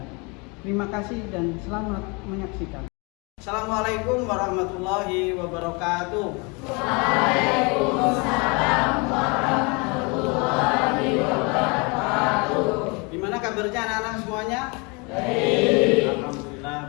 Terima kasih dan selamat menyaksikan. Assalamualaikum warahmatullahi wabarakatuh. Waalaikumsalam warahmatullahi wabarakatuh. Gimana kabarnya anak-anak semuanya? Baik. Alhamdulillah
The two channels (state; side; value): quieter; right; 29.9 dB